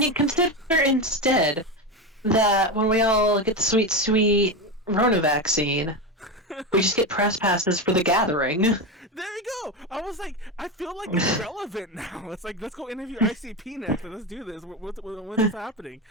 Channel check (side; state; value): both; normal; correlation 0.17